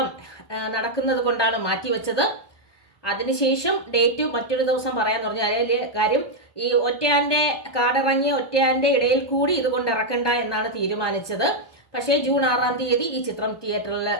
നടക്കുന്നത് കൊണ്ടാണ് മാറ്റിവെച്ചത്. അതിനുശേഷം ഡേറ്റ് മറ്റൊരു ദിവസം പറയാൻ പറഞ്ഞു. അതിലെ കാര്യം ഈ ഒറ്റയാന്റെ കാടിറങ്ങിയ ഒറ്റയാന്റെ ഇടയിൽ കൂടി ഇതുകൊണ്ട് ഇറക്കണ്ട എന്നാണ് തീരുമാനിച്ചത്. പക്ഷേ ജൂൺ 6 ഈ ചിത്രം തിയേറ്ററിൽ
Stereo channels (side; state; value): right; late; 1.2 ms